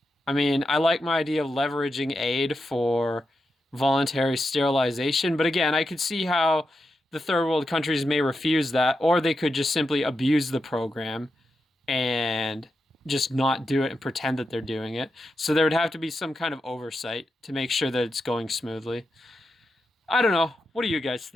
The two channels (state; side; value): normal; both; correlation 0.88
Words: I mean, I like my idea of leveraging aid for voluntary sterilization, but again, I could see how the third world countries may refuse that, or they could just simply abuse the program and just not do it and pretend that they're doing it. So there would have to be some kind of oversight to make sure that it's going smoothly. I don't know. What do you guys